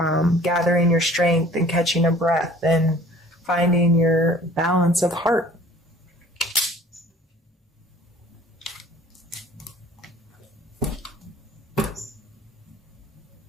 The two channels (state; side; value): normal; both; correlation 0.50